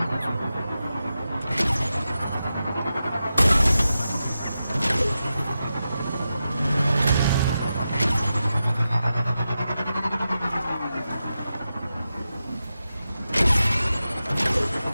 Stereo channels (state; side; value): inverted; both; correlation -0.91